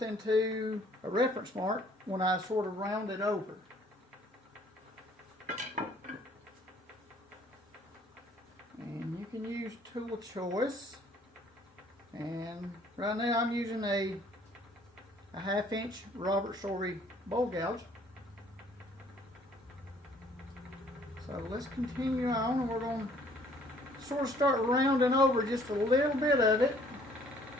to a reference mark when I sort of round it over. And you can use tool of choice. And right now I'm using a 1/2 inch Robert Sorey bowl gouge. So let's continue on, and we're going to sort of start rounding over just a little bit of it.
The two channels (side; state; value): both; normal; correlation 0.59